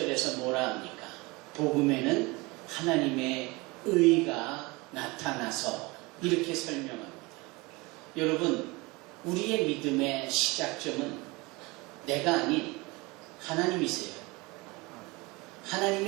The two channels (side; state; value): left; quieter; 24.4 dB